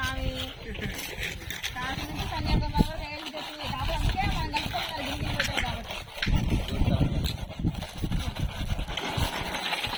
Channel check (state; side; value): identical; both; correlation 1.00